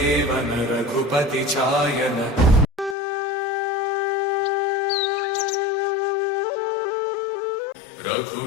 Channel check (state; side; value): drops out; right; at 3.0 s